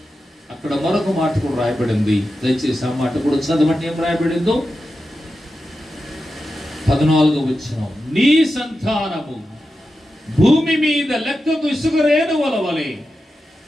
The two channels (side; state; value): both; normal; correlation 0.91